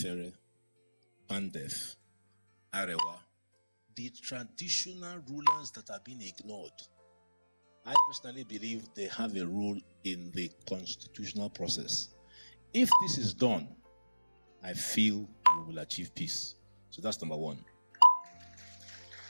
Pandef, Arewa, the traditional rulers that have been ignored. I personally believe they have a role in the constitutional process. If this is done, I feel we will achieve peace. So that's number one.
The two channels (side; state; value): both; inverted; correlation -1.00